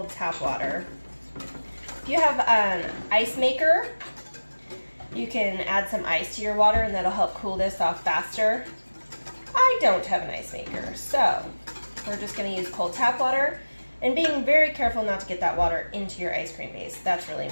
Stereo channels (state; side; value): inverted; both; correlation -1.00